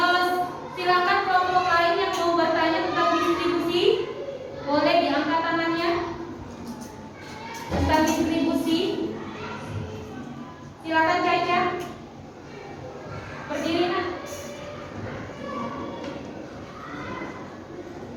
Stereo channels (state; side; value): identical; both; correlation 1.00